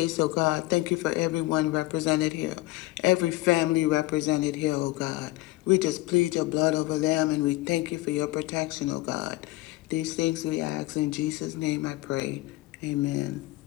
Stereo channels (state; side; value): quieter; right; 18.6 dB